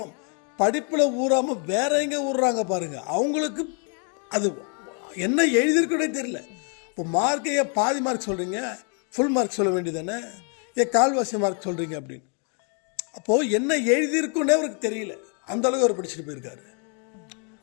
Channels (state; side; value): quieter; right; 38.8 dB